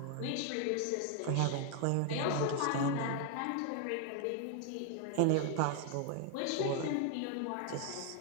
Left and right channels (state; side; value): different; both; correlation 0.00